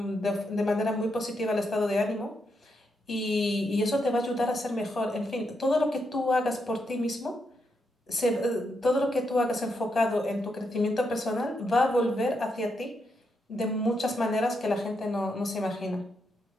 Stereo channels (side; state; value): both; normal; correlation 0.81